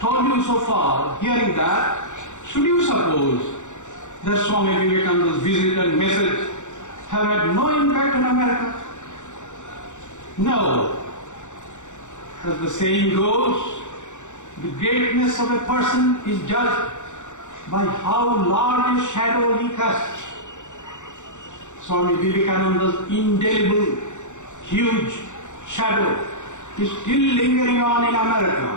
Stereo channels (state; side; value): late; right; 0.85 ms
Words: you so far, hearing that, should you suppose that Swami Vivekananda's visit and message have had no impact on America? No. As the saying goes, the greatness of a person is judged by how large a shadow he casts. Swami Vivekananda's indelible, huge shadow is still lingering on in